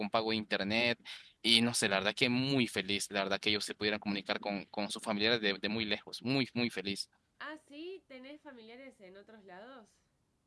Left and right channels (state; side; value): identical; both; correlation 1.00